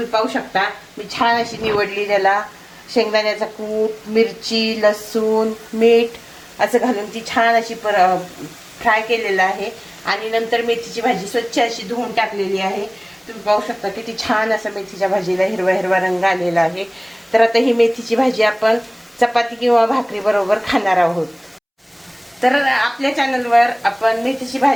पाहू शकता मी छान अशी निवडली, त्याला शेंगदाण्याचा कूट, मिरची, लसूण, मीठ असं घालून ती छान अशी फ्राय केलेलं आहे। आणि नंतर मेथीची भाजी स्वच्छ अशी धुवून टाकलेली आहे। तुम्ही पाहू शकता किती छान असं मेथीच्या भाजीला हिरवा हिरवा रंग आलेला आहे। तर आता ही मेथीची भाजी आपण चपाती किंवा भाकरी बरोबर खाणार आहोत। तर आपल्या चॅनलवर आपण मेथीची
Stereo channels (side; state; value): both; identical; correlation 1.00